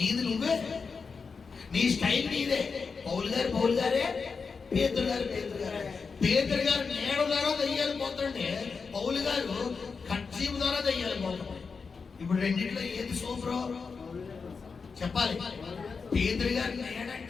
నువ్వే, నీ స్టైల్ నీదే. పౌలు గారే, పేతురు గారు నేడ ద్వారా దయ్యాలు పోతుంటే పౌలు గారు కచ్చీపు ద్వారా దయ్యాలు పోతాడు. ఇప్పుడు రెండింటిలో ఏది సూపరో చెప్పాలి. పేతురు గారు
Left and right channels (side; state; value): right; quieter; 5.1 dB